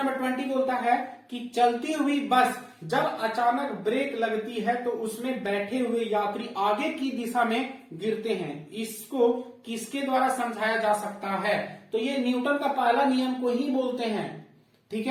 20 बोलता है कि चलती हुई बस जब अचानक ब्रेक लगती है तो उसमें बैठे हुए यात्री आगे की दिशा में गिरते हैं। इसको किसके द्वारा समझाया जा सकता है? तो ये न्यूटन का पहला नियम को ही बोलते हैं, ठीक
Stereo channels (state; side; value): identical; both; correlation 1.00